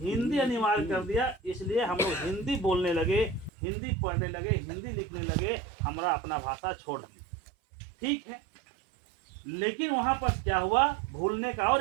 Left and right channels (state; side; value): drops out; left; at 3.5 s